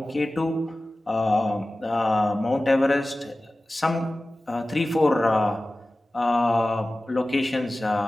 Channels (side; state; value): both; normal; correlation 0.96